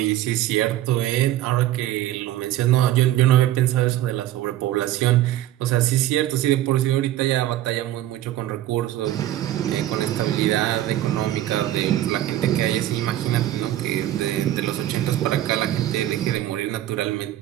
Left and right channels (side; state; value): left; quieter; 13.5 dB